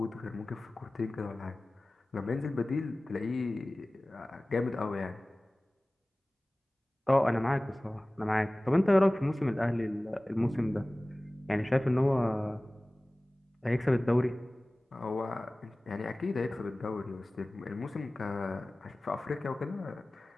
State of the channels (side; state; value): both; normal; correlation 0.98